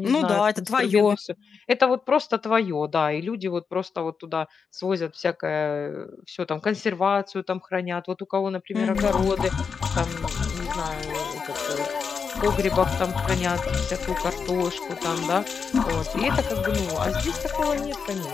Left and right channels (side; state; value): right; quieter; 5.8 dB